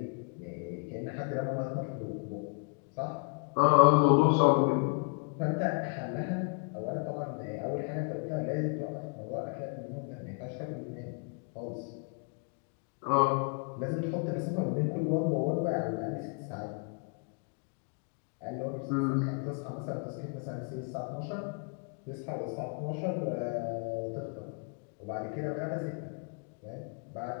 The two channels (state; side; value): quieter; right; 37.4 dB